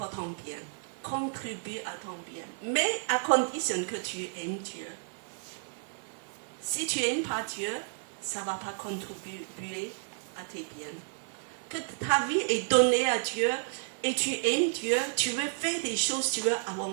ton bien. Contribue à ton bien. Mais à condition que tu aimes Dieu. Si tu n'aimes pas Dieu, ça ne va pas contribuer à tes biens. Que ta vie est donnée à Dieu et tu aimes Dieu, tu veux faire des choses, tu veux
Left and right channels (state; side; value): silent; left; digital silence